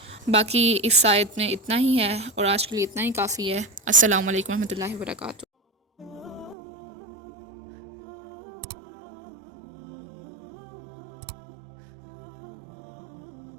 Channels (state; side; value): drops out; left; at 6.6 s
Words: باقی اس آیت میں اتنا ہی ہے اور آج کے لیے اتنا ہی کافی ہے۔ السلام علیکم ورحمۃ اللہ وبرکاتہ۔